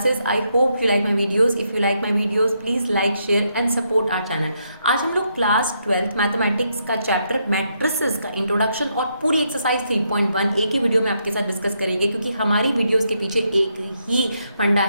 I hope you like my videos. If you like my videos, please like, share and support our channel. आज हम लोग class 12th mathematics का chapter matrices का introduction और पूरी exercise 3.1 एक ही video में आपके साथ डिस्कस करेंगे, क्योंकि हमारी वीडियोस के पीछे एक ही फंडा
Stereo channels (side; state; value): both; inverted; correlation -0.78